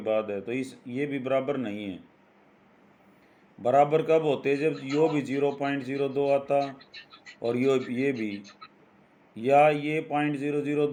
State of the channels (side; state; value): both; identical; correlation 1.00